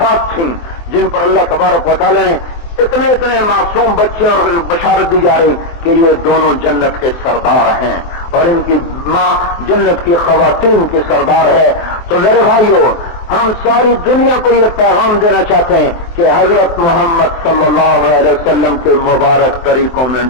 تھیں جن پر اللہ تبارک و تعالی نے اتنے معصوم بچے اور بشارت دی جا رہی کہ یہ دونوں جنت کے سردار ہیں اور ان کی ماں جنت کی خواتین کی سردار ہے۔ تو میرے بھائیو، ہم ساری دنیا کو یہ پیغام دینا چاہتے ہیں کہ حضرت محمد صلی اللہ علیہ وسلم کے مبارک طریقوں میں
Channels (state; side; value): late; right; 23 ms